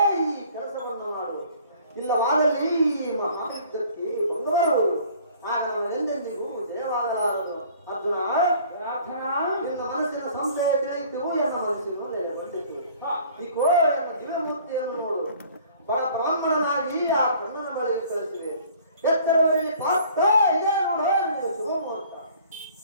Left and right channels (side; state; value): both; inverted; correlation -0.52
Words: ಈ ಕೆಲಸವನ್ನು ಮಾಡು. ಇಲ್ಲವಾದಲ್ಲಿ ಈ ಮಹಾಯುದ್ಧಕ್ಕೆ ಬಂದು ಬರುವುದು. ಆಗ ನಮ್ಮ ಎಂದೆಂದಿಗೂ ಜಯವಾಗಲಾರದು. ಅರ್ಜುನ, ನಿನ್ನ ಮನಸ್ಸಿನ ಸಂಶಯ ತಿಳಿಯಿತು, ಎನ್ನ ಮನಸ್ಸಿನ ನೆಲೆಗೊಂಡಿತು. ಈ ಗೋಳನ ದಿವ್ಯಮೂರ್ತಿಯನ್ನು ನೋಡು. ಬಹಳ ಬ್ರಾಹ್ಮಣನಾಗಿ ಆ ಕಣ್ಣನ ಬಳಿಗೆ ಕಳಿಸಿವೆ. ಎಚ್ಚರದಲ್ಲಿ ಪಾತ್ರ ಇದೇ ನೋಡು ಶುಭಮುಹೂರ್ತ.